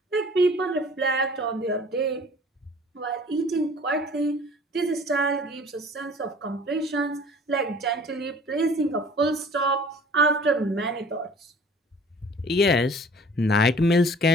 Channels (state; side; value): normal; both; correlation 0.49